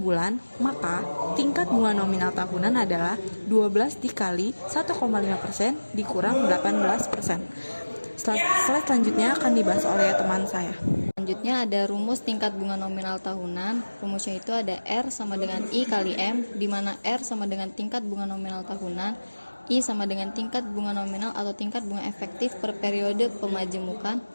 maka tingkat bunga nominal tahunan adalah 12 dikali 1,5% dikurang 18%. Slide selanjutnya akan dibahas oleh teman saya. Selanjutnya ada rumus tingkat bunga nominal tahunan. Rumusnya itu ada R sama dengan I kali M, di mana R sama dengan tingkat bunga nominal tahunan, I sama dengan tingkat bunga nominal atau tingkat bunga efektif per periode pemajemukan,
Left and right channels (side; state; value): both; inverted; correlation -1.00